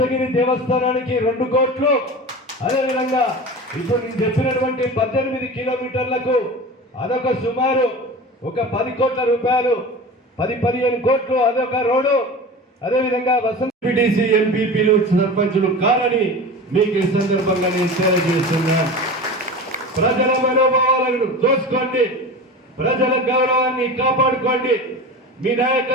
దేవస్థానానికి 2 కోట్లు, అదేవిధంగా ఇప్పుడు నేను చెప్పినటువంటి 18 కిలోమీటర్లకు అదొక సుమారు ఒక 10 కోట్ల రూపాయలు, 10-15 కోట్లు అదొక రోడ్డు. అదేవిధంగా వసంత పిటిసి ఎంపీపీలు సర్పంచులు కాదని మీకు ఈ సందర్భంగా నేను తెలియజేస్తున్నా. ప్రజల మనోభావాలను దోచుకోండి, ప్రజల గౌరవాన్ని కాపాడుకోండి, మీ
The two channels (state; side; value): normal; both; correlation 0.32